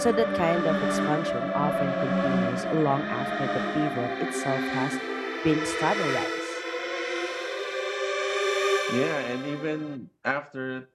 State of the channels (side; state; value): both; identical; correlation 1.00